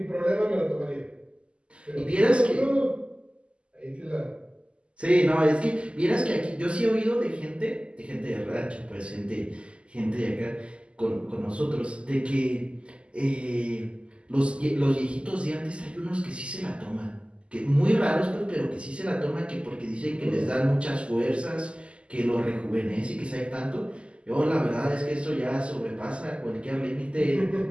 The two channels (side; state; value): left; late; 0.054 ms